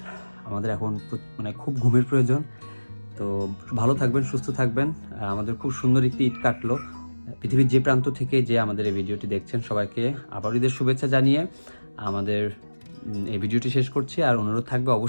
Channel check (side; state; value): both; inverted; correlation -1.00